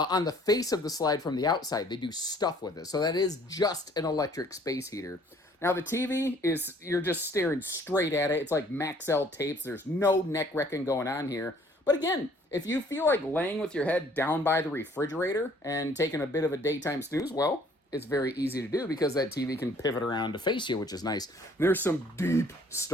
the face of the slide from the outside, they do stuff with it. So that is just an electric space heater. Now the TV is, you're just staring straight at it. It's like Maxell tapes. There's no neck wrecking going on here. But again, if you feel like laying with your head down by the refrigerator and taking a bit of a daytime snooze, well, it's very easy to do because that TV can pivot around to face you, which is nice. There's some deep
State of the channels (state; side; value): normal; both; correlation 0.58